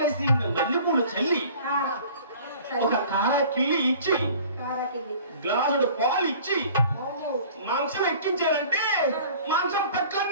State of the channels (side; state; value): both; inverted; correlation -0.47